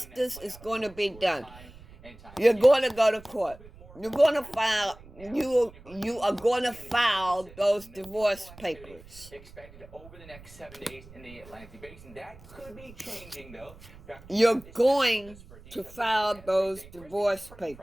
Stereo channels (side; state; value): right; noise; rumble, 20 dB below the sound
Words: is going to be done. You're going to go to court. You're going to file. You are going to file those divorce papers. Expected over the next 7 days in the Atlantic Basin. That could be changing, though. You're going to file those divorce